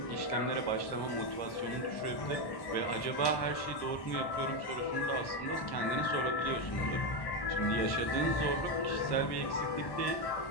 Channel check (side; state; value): right; late; 1.1 ms